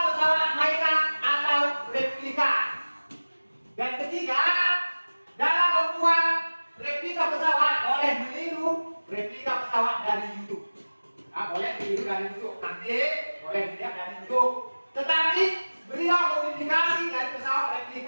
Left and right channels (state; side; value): inverted; both; correlation -1.00